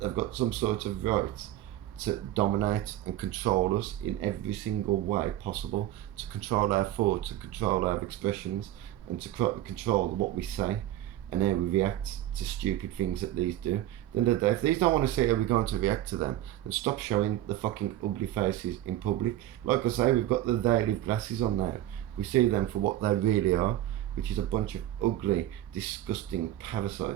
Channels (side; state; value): left; quieter; 13.5 dB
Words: got some sort of right to dominate and control us in every single way possible, to control our thoughts, to control our expressions, and to control what we say and how we react to stupid things that these do. Then the day, if these don't want to see how we're going to react to them, then stop showing the fucking ugly faces in public. Like I say, we've got the daily glasses on now. We see them for what they really are, which is a bunch of ugly, disgusting